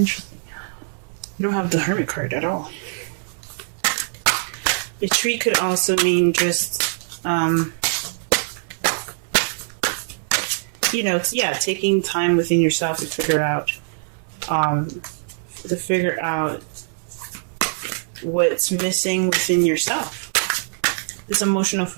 You don't have the Hermit card at all. Retreat could also mean just, taking time within yourself to figure out what's missing within yourself. This emotional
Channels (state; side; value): silent; left; 64 dB below the other